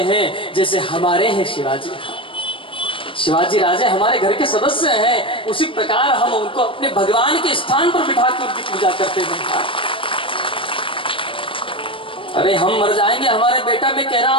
हैं जैसे हमारे हैं शिवाजी। शिवाजी राजे हमारे घर के सदस्य हैं, उसी प्रकार हम उनको अपने भगवान के स्थान पर बिठा कर उनकी पूजा करते हैं। अरे हम मर जाएंगे, हमारे बेटा, मैं कह रहा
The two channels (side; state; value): right; late; 0.25 ms